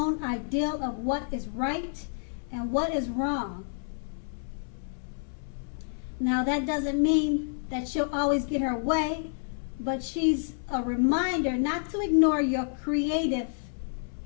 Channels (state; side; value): silent; right; 58 dB below the other